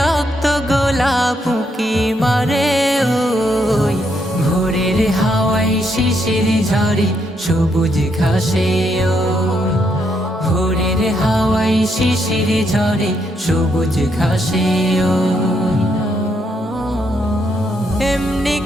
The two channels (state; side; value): normal; both; correlation 0.76